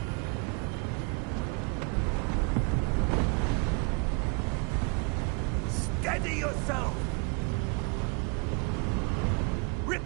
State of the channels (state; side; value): quieter; left; 35.0 dB